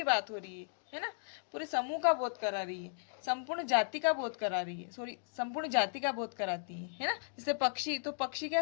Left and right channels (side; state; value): right; silent; digital silence